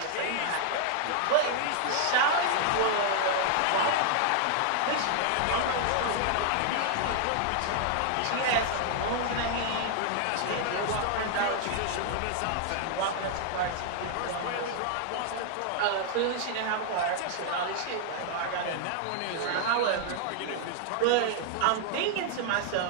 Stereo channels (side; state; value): both; different; correlation 0.00